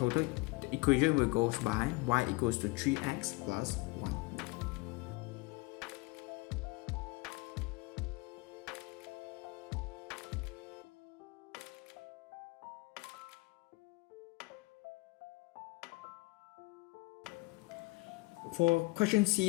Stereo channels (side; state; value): right; quieter; 24.8 dB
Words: equation will go by y equals to 3x plus 1. For question